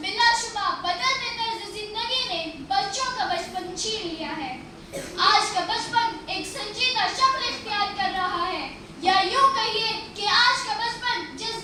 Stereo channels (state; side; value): identical; both; correlation 1.00